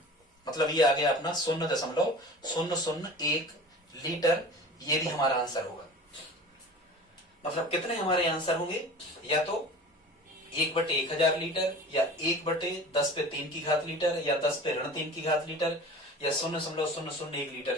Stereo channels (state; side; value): normal; both; correlation 0.39